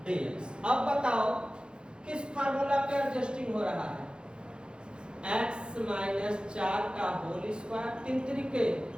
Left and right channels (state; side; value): late; left; 0.051 ms